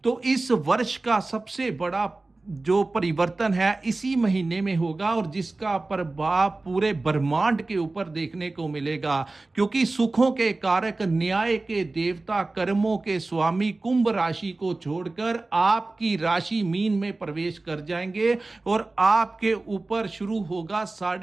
तो इस वर्ष का सबसे बड़ा जो परिवर्तन है इसी महीने में होगा और जिसका प्रभाव पूरे ब्रह्मांड के ऊपर देखने को मिलेगा, क्योंकि सुखों के कारक, न्याय के देवता, कर्मों के स्वामी कुंभ राशि को छोड़कर आपकी राशि मीन में प्रवेश कर जाएंगे और आपके ऊपर शुरू होगा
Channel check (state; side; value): quieter; left; 3.2 dB